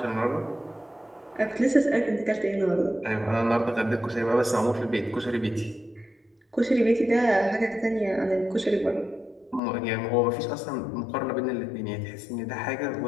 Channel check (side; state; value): right; drops out; at 9.6 s